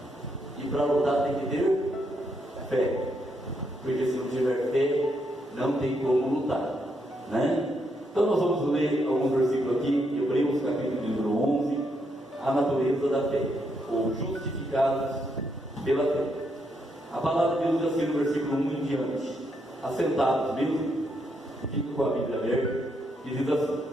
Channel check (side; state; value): both; normal; correlation 0.78